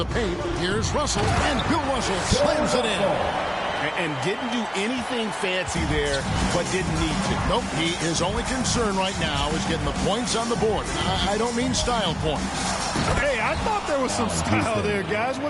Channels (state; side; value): identical; both; correlation 1.00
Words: paint. Here's Russell. And Bill Russell slams it in. And didn't do anything fancy there, but didn't need to. Nope. His only concern right now is getting the points on the board. I don't mean style points. Hey, I thought there was some style there, guys.